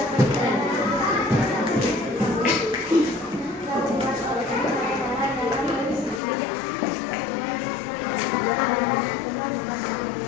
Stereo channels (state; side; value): drops out; right; at 6.2 s